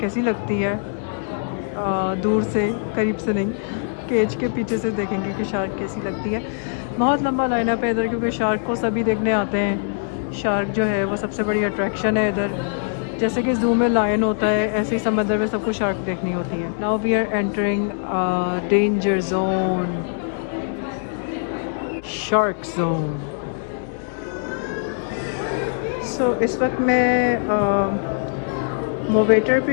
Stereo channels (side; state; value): right; silent; digital silence